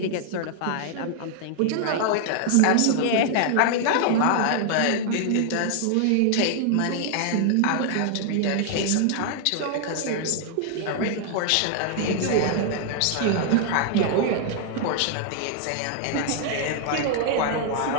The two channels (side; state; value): both; different; correlation 0.00